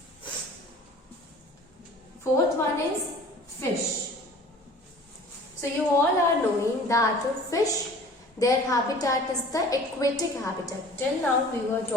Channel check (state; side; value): normal; both; correlation 0.47